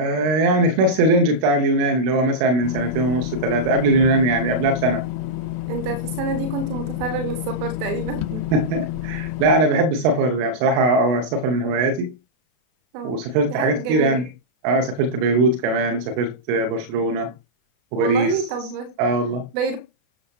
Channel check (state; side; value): late; left; 32 ms